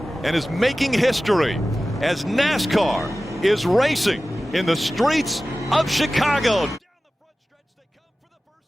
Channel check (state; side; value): normal; both; correlation 0.96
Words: and is making history as NASCAR is racing in the streets of Chicago.